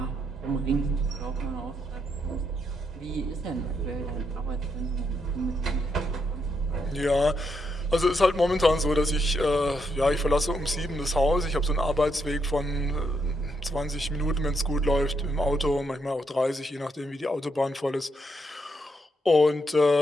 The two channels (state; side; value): normal; both; correlation 0.78